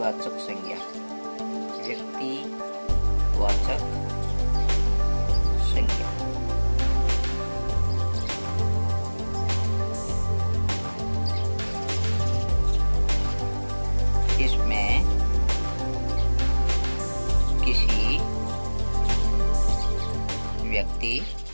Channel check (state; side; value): inverted; both; correlation -1.00